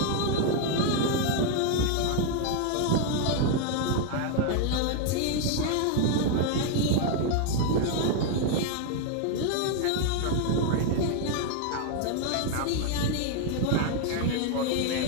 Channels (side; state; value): both; different; correlation 0.00